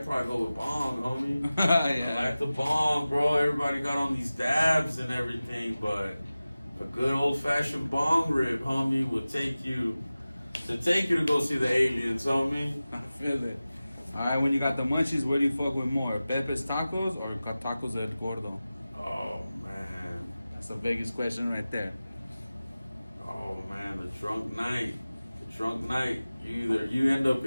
probably go with bong, homie. Yeah. I like the bong, bro. Everybody got on these dabs and everything, but a good old fashioned bong rip, homie, will take you to go see the aliens, homie. I feel it. Alright, when you got the munchies, where do you fuck with more? Pepe's Tacos or Tacos El Gordo? Oh man. That's the biggest question right there. Oh man, the drunk night. You end up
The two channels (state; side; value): inverted; both; correlation -0.96